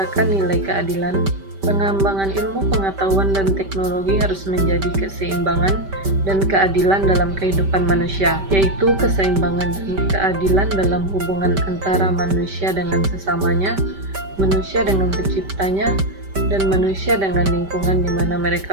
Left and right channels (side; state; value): left; late; 5.1 ms